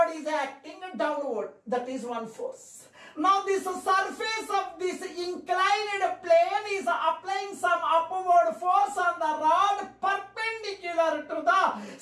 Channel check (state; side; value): identical; both; correlation 1.00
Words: is acting downward. That is one force. Now this surface of this inclined plane is applying some upward force on the rod perpendicular to the